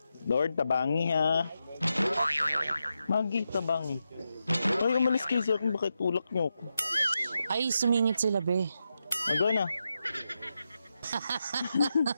Lord, tabangi ha. Magi, tabangi. Ay, umalis kayo siya kung bakit tulak niyo ako. Ay, sumingit sila, be. Go na.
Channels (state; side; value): inverted; both; correlation -0.87